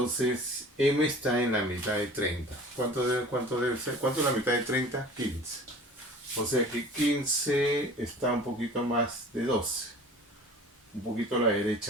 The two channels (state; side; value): normal; both; correlation 0.43